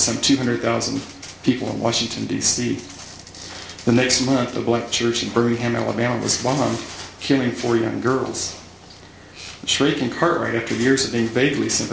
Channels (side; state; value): both; identical; correlation 1.00